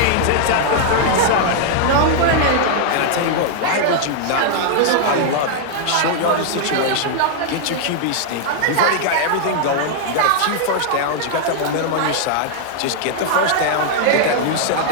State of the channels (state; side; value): different; both; correlation -0.01